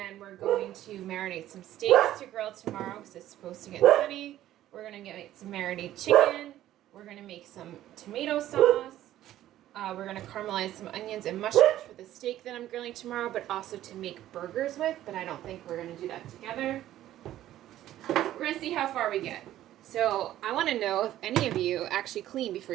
we're going to marinate some steaks to grill tomorrow because it's supposed to get sunny. We're going to make some marinated chicken. We're going to make some tomato sauce. We're going to caramelize some onions and mushrooms for the steak that I'm grilling tomorrow, but also to make burgers with, but I don't think we're going to do that together. We're going to see how far we get. So I want to know if any of you actually clean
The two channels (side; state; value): left; quieter; 13.3 dB